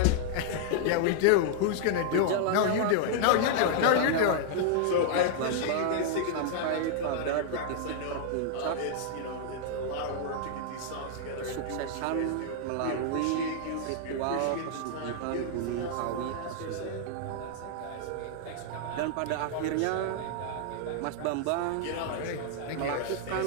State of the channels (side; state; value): both; different; correlation -0.01